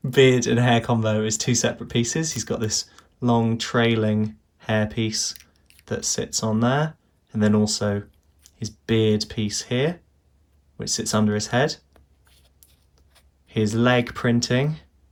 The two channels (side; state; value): both; identical; correlation 1.00